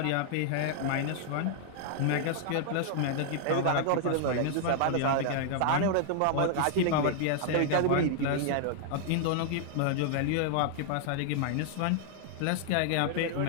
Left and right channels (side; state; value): both; different; correlation -0.01